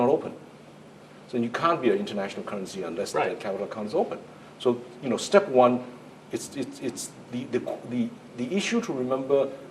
open. So you can't be an international currency unless the capital account is open. So, step one, it's the issue to remember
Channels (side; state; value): both; identical; correlation 1.00